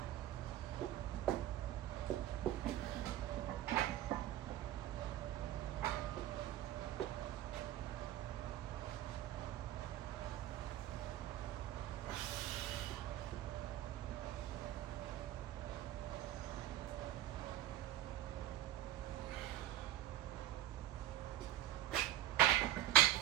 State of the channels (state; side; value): quieter; left; 13.5 dB